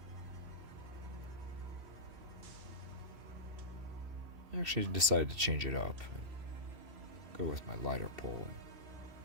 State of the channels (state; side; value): late; left; 2.7 ms